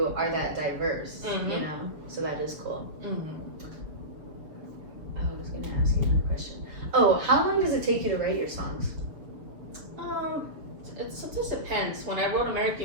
are that diverse, you know? So that is cool. I was going to ask you another question. Oh, how long does it take you to write your songs? It sometimes depends. When I wrote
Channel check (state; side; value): late; left; 7.0 ms